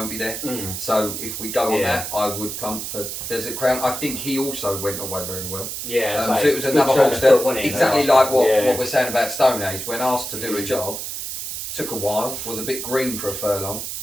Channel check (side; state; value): right; noise; hiss, 6 dB below the sound